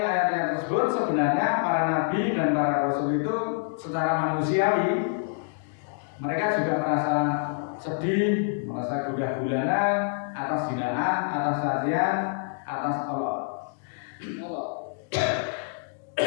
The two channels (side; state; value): right; silent; digital silence